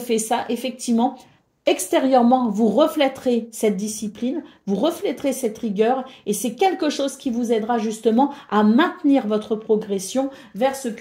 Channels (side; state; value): both; identical; correlation 1.00